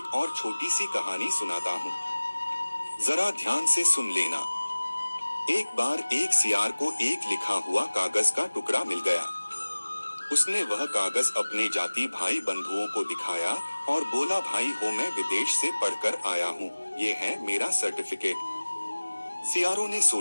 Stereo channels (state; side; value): inverted; both; correlation -1.00